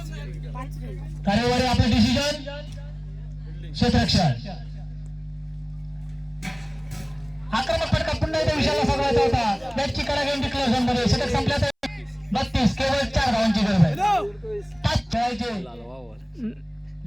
तारेवाडी आपलं डिसिजन क्षेत्ररक्षण. आक्रमक फटका पुन्हा एकदा विषयाला साधवायचा होता. बॅटची कडा घेऊन डिक्लेअर झोन मध्ये. षटक संपल्या तर 32. केवळ 4 धावांची गरज आहे. 5 खेळायचे.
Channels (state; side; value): identical; both; correlation 1.00